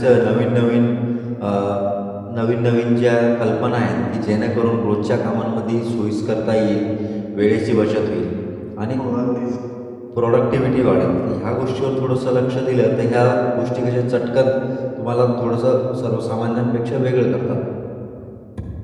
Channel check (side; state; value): both; identical; correlation 1.00